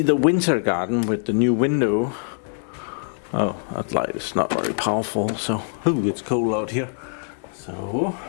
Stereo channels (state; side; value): silent; right; digital silence